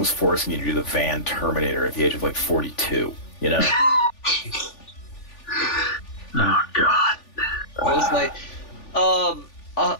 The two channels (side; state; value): right; late; 3.4 ms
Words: forcing you to do the Van Terminator at the age of like 42. You know. Oh God. It was like,